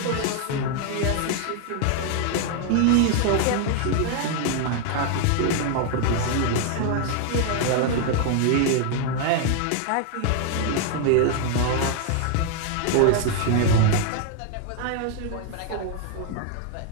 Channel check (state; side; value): different; both; correlation 0.00